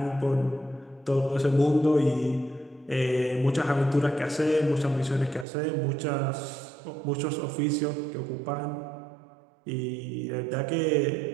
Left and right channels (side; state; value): left; drops out; at 5.5 s